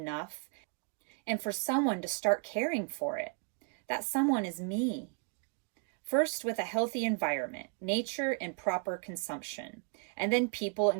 and for someone to start caring for it. That someone is me. First with a healthy environment, nature and proper consumption, and then people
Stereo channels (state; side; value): quieter; left; 38.9 dB